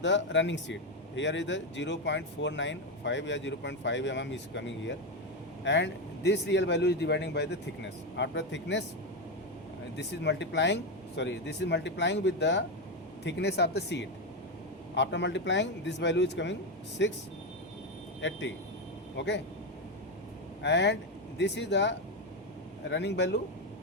the running sheet. Here is the 0.495 or 0.5 mm is coming here, and this real value is dividing by the thickness. After thickness, this is multiplying with the thickness of the sheet. After multiplying, this value is coming 680. Okay, and this is the running value,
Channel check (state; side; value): normal; both; correlation 0.10